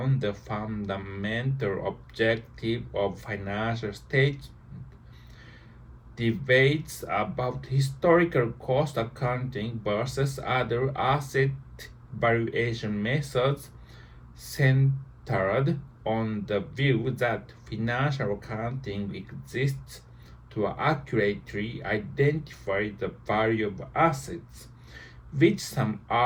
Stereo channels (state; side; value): identical; both; correlation 1.00